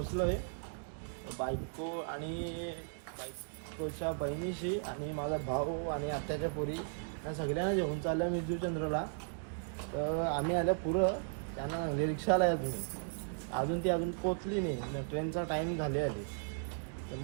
आहे. बायको आणि बायकोच्या बहिणीशी आणि माझा भाऊ आणि आत्याच्या पोरी या सगळ्यांना जेवून चालल्या मिरजूचंद्रला. तर आम्ही आल्या पुरं त्यांना सांगले रिक्षाला या तुम्ही. अजून ती पोचली नाही. ट्रेनचा टाईम झाले आली. तर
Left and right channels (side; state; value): left; silent; digital silence